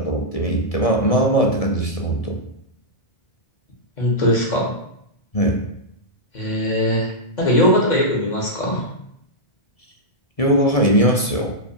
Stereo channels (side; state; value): right; late; 1.7 ms